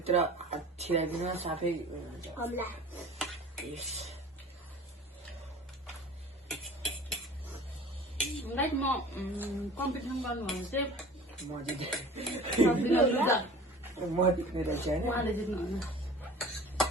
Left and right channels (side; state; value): both; normal; correlation 0.42